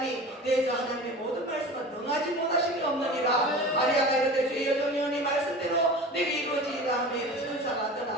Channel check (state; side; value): normal; both; correlation 0.36